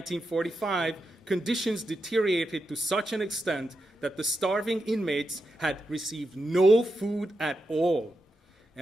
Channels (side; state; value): both; normal; correlation 0.87